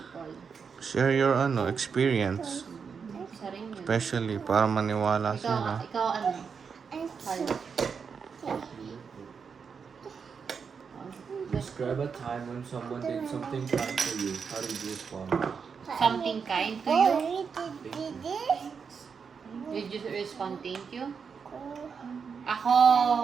Share your experience. Isa rin yun. Especially para maniwala sila. Ikaw ano? Hal. Describe a time when someone did something kind for you. How did you respond? Something kind to you? Did you respond thank you?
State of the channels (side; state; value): left; quieter; 6.0 dB